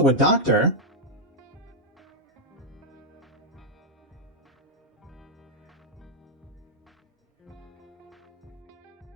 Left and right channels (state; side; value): normal; both; correlation -0.02